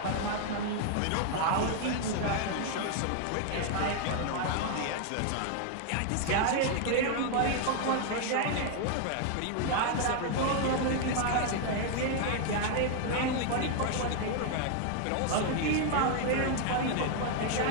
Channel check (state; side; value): different; both; correlation 0.00